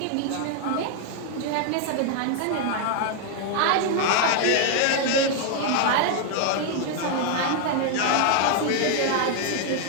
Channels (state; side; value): different; both; correlation 0.00